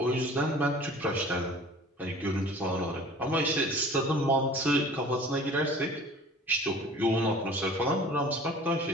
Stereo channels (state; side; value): normal; both; correlation 0.46